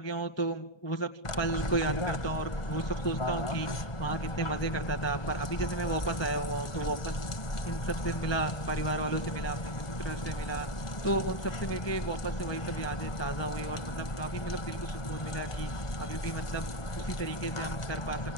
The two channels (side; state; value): right; late; 1.2 ms